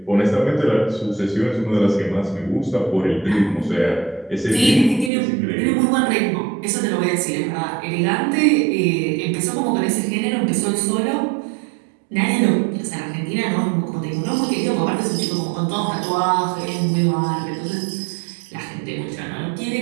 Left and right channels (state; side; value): drops out; left; at 5.1 s